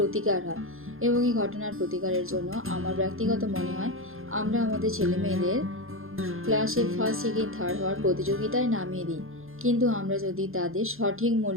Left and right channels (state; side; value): late; left; 0.60 ms